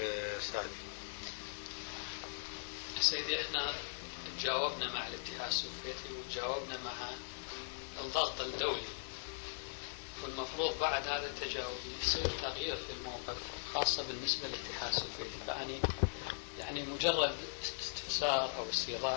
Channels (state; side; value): silent; right; digital silence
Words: سعدي. سيدي احنا تجاوبنا مع الاتحاد السوفيتي وتجاوبنا مع الضغط الدولي، والمفروض بعد هذا التجاوب يصير تغيير في الموقف خاصة بالنسبة للاتحاد السوفيتي. فأني يعني مجرد استفسار أو